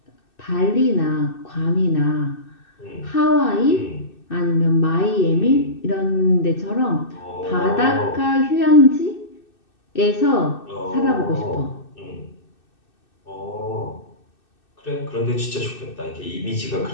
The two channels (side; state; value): right; late; 2.6 ms